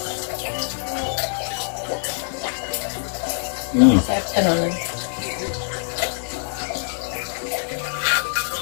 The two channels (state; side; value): silent; right; 59 dB below the other